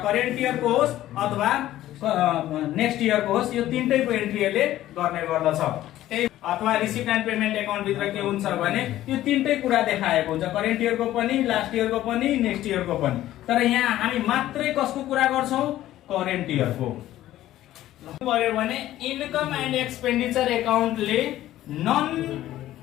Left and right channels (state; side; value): quieter; right; 14.0 dB